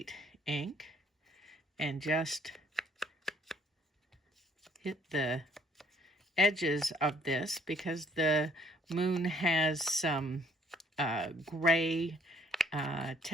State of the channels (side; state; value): both; normal; correlation 0.63